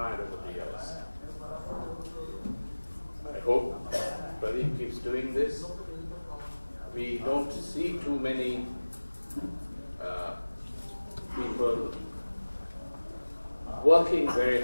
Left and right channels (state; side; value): inverted; both; correlation -1.00